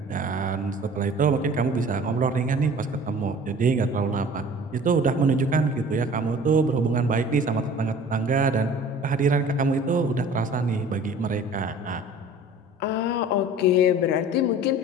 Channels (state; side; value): normal; both; correlation 0.46